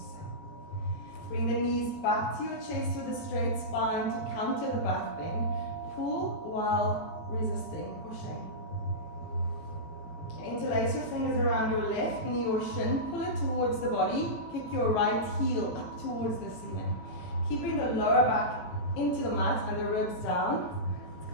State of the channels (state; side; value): late; right; 17 ms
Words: Bring the knees back to your chest with a straight spine to counter the back bend. Pull while resisting, pushing. Interlace your fingers around your left knee or shin. Pull it towards the body. Kick your right heel up towards the ceiling. Keeping the lower back into the mat and the ribs down. It's